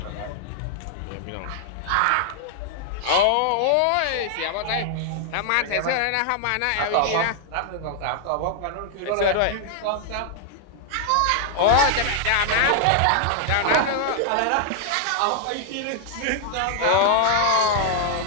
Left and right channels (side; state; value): both; different; correlation 0.00